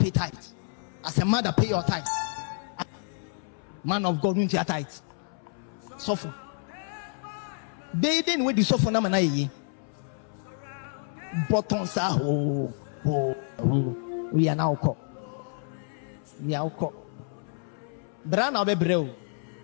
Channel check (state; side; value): silent; right; 59 dB below the other